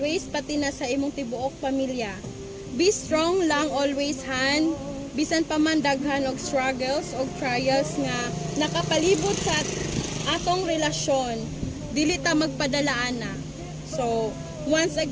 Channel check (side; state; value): both; identical; correlation 1.00